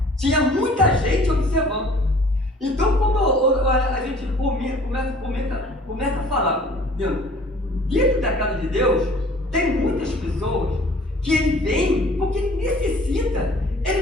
Tinha muita gente observando. Então, quando a gente começa a falar, dentro da casa de Deus, tem muitas pessoas que ele vem porque ele necessita,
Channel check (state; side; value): normal; both; correlation 0.51